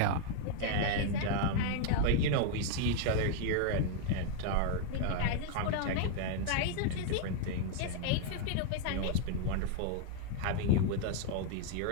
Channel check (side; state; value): both; different; correlation 0.00